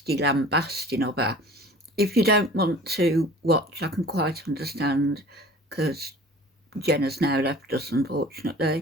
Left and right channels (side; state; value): both; normal; correlation 0.45